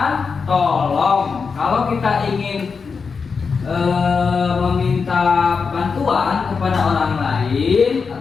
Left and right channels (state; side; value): quieter; right; 5.3 dB